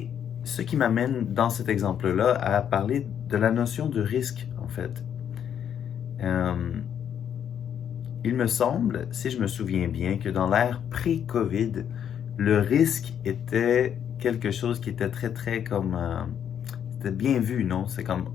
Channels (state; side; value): quieter; right; 8.9 dB